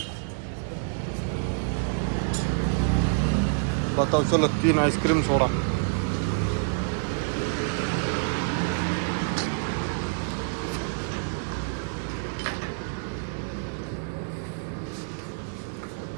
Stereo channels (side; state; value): left; silent; digital silence